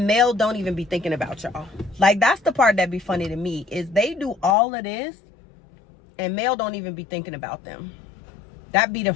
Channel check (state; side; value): drops out; right; at 4.5 s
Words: Mel don't even be thinking about y'all. Like, that's the part that be funny to me, is they do all of this and Mel don't even be thinking about them. That be the